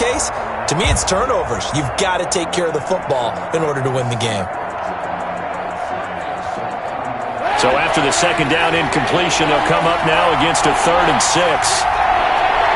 to me, it's turnovers. You've got to take care of the football in order to win the game. So after the second down incompletion, they'll come up now against a 3rd and 6.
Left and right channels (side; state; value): both; identical; correlation 1.00